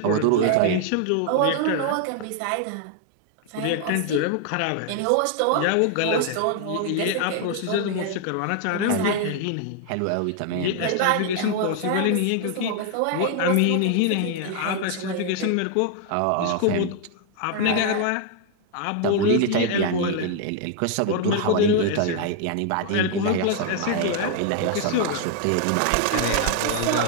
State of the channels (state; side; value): different; both; correlation 0.00